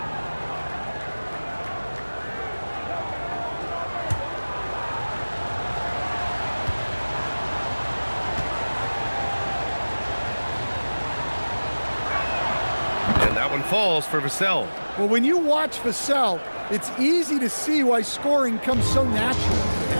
That one falls for Vassell. Well, when you watch Vassell, it's easy to see why scoring comes so natural.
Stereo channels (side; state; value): both; inverted; correlation -1.00